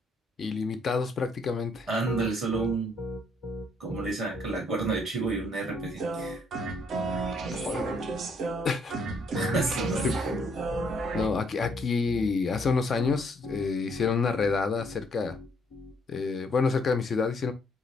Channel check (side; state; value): both; normal; correlation 0.68